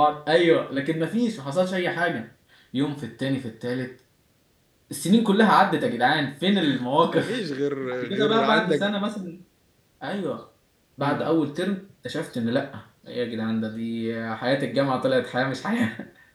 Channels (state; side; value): identical; both; correlation 1.00